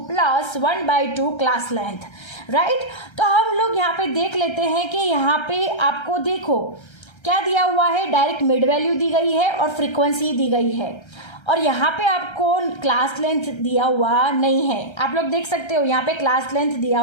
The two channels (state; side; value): late; right; 1.3 ms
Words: plus 1/2 class length, right? तो हम लोग यहाँ पे देख लेते हैं कि यहाँ पे आपको देखो क्या दिया हुआ है. डायरेक्ट मिड वैल्यू दी गई है और फ्रीक्वेंसी दी गई है, और यहाँ पे आपको क्लास लेंथ दिया हुआ नहीं है. आप लोग देख सकते हो यहाँ पे क्लास लेंथ दिया